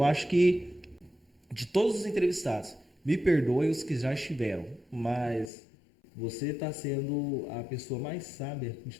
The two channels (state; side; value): drops out; right; at 5.5 s